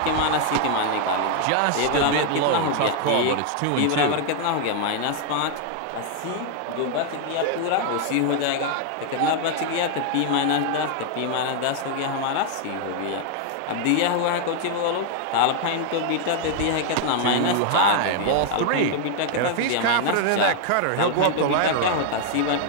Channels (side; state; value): both; different; correlation 0.00